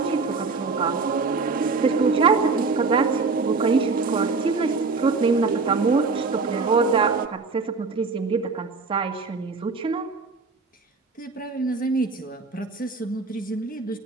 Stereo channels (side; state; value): left; quieter; 4.3 dB